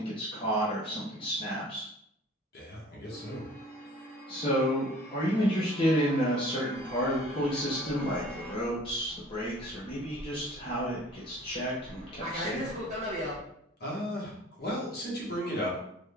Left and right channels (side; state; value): both; normal; correlation 0.49